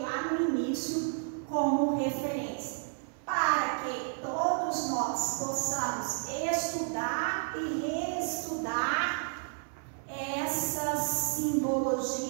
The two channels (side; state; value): left; silent; 57 dB below the other